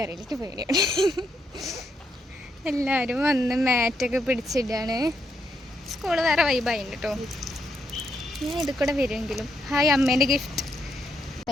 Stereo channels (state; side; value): normal; both; correlation 0.78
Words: എനിക്ക് പേടിയാണ്. എല്ലാവരും വന്ന് മാറ്റൊക്കെ പിടിച്ചിട്ടാണ്. സ്കൂള് വേറെ വൈബായിട്ടുണ്ട് കേട്ടോ. ഞാൻ ഇത് കൂടെ വരുമെങ്കിലും. ഹായ്, അമ്മേൻ്റെ ഗിഫ്റ്റ്.